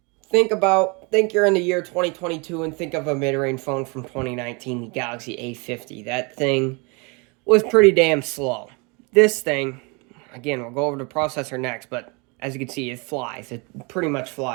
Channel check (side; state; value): left; quieter; 30.4 dB